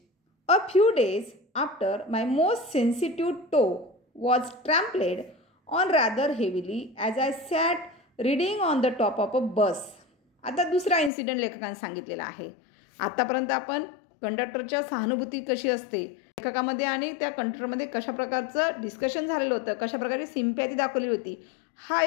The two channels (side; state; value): right; drops out; at 11.1 s